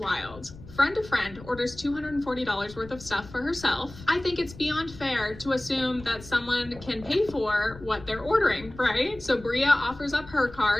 Friend to friend orders $240 worth of stuff for herself. I think it's beyond fair to assume that someone can pay for what they're ordering, right? So Bria offers up her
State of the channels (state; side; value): noise; left; rumble, 18 dB below the sound